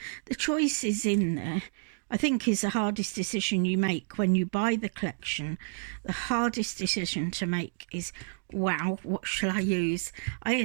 The choice is in there. I think is the hardest decision you make when you buy the collection. The hardest decision to make is, wow, what shall I use?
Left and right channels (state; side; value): silent; left; digital silence